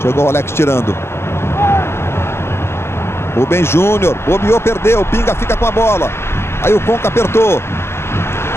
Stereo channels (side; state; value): right; late; 0.12 ms